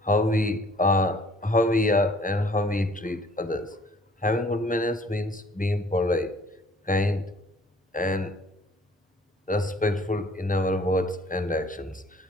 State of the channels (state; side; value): normal; both; correlation 0.56